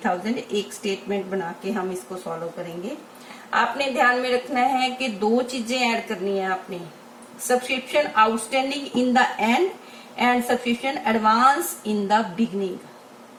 एक स्टेटमेंट बना के हम इसको सॉल्व करेंगे। आपने ध्यान में रखना है कि दो चीजें ऐड करनी है आपने, subscription outstanding in the end and subscription advance in the beginning.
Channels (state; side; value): identical; both; correlation 1.00